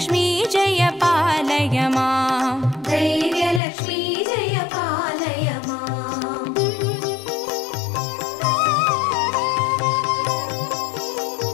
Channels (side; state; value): right; drops out; at 3.6 s